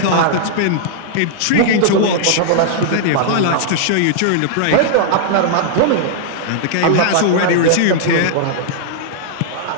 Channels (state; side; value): different; both; correlation -0.01